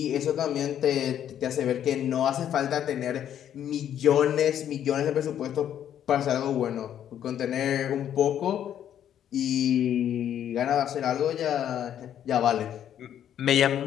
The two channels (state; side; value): quieter; right; 10.1 dB